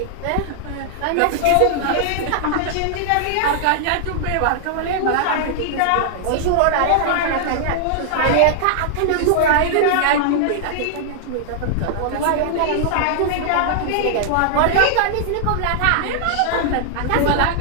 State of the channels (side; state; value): both; different; correlation -0.01